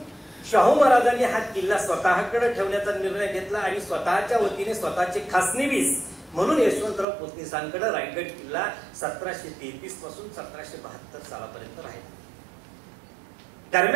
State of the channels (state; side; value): drops out; left; at 7.1 s